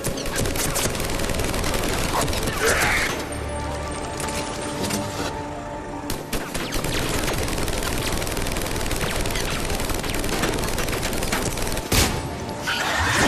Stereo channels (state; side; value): identical; both; correlation 1.00